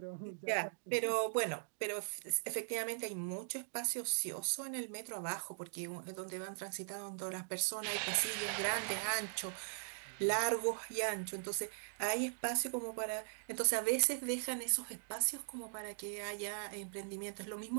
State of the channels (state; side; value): silent; left; digital silence